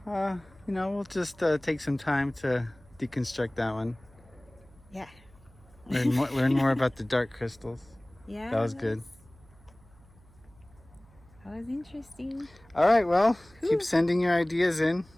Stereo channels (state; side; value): noise; right; hum, 27 dB below the sound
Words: we'll just take some time to deconstruct that one. Yeah. Learn more about the dark crystals. Yeah. That was good. That was interesting. All right, well, keep sending your ideas in.